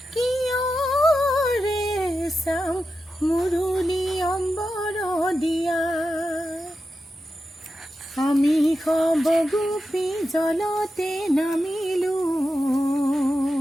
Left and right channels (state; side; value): normal; both; correlation 0.90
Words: कियो रे सम मुरुली अम्बर दिया আমি সবগোপী জলতে নামিলো